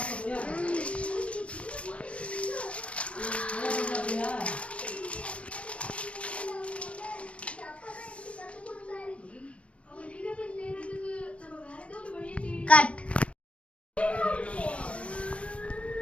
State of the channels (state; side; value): late; right; 0.061 ms